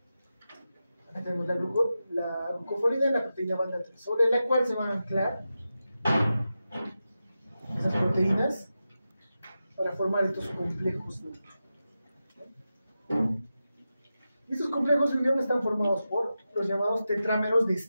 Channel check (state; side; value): inverted; both; correlation -0.91